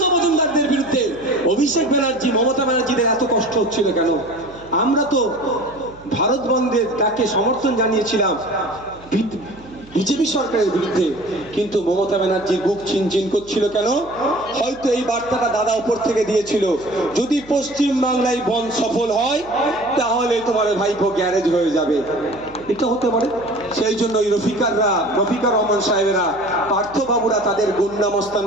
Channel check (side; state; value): right; noise; hum, 22 dB below the sound